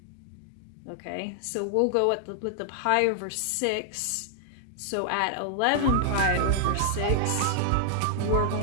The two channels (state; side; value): different; both; correlation 0.00